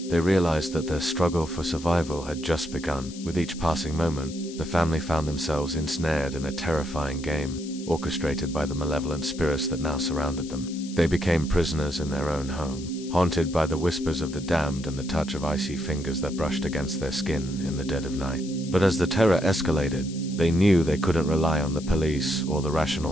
they realized that their struggle for survival had just begun. With each passing moment, the family found themselves ensnared in a terrifying game, orchestrated by the malevolent spirits that now surrounded them. They became prisoners in their own home, haunted by the whispers of the damned and the touch of icy fingers that brushed against their skin in the dead of night. But as the terror escalated, they knew they couldn't rely on the police or the rational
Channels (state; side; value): noise; left; hiss, 16 dB below the sound